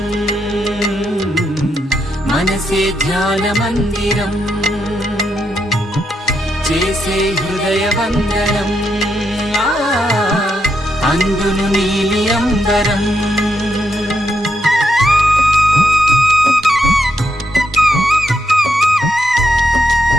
మనసే ధ్యాన మందిరం చేసే హృదయ వందనం అందును నీలి అంబరం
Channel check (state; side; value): normal; both; correlation 0.81